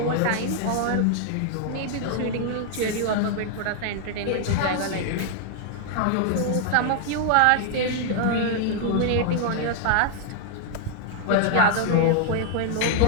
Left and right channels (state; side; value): different; both; correlation 0.00